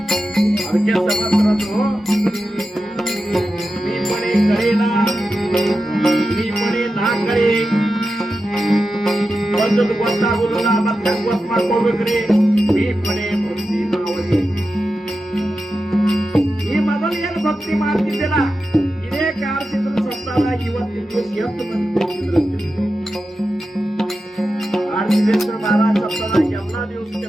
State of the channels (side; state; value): both; normal; correlation 0.91